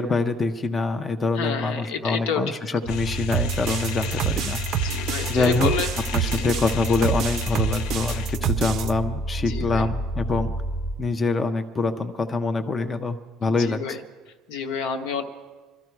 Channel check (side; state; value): both; normal; correlation 0.64